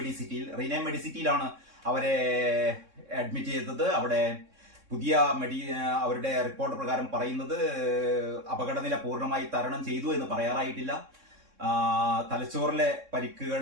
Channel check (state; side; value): late; left; 3.6 ms